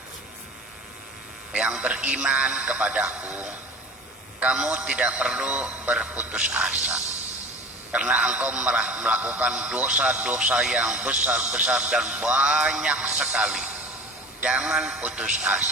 yang beriman kepadaku, kamu tidak perlu berputus asa, karena engkau melakukan dosa-dosa yang besar-besar dan banyak sekali. Jangan putus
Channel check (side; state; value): both; normal; correlation 0.38